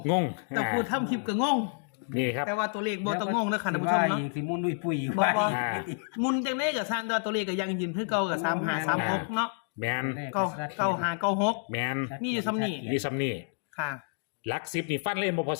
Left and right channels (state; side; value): silent; right; 58 dB below the other